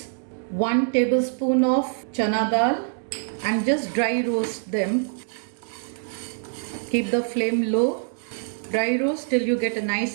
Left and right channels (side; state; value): left; silent; digital silence